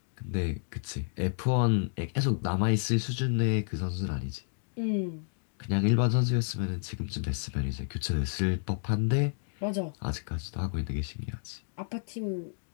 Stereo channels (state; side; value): silent; right; digital silence